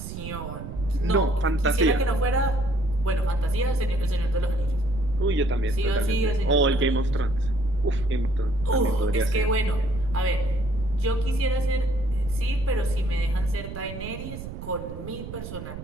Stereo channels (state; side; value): noise; right; rumble, 10 dB below the sound